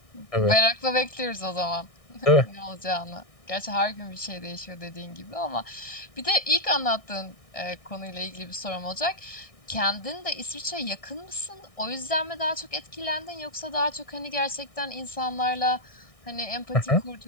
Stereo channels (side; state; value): right; late; 1.6 ms